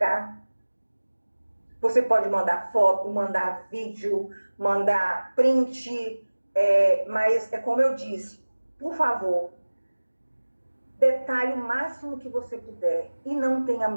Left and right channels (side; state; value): both; inverted; correlation -1.00